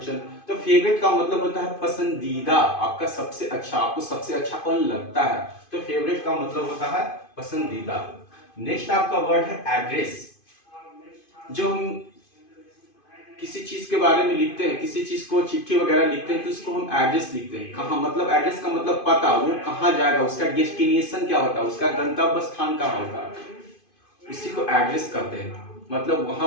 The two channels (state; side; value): late; right; 2.5 ms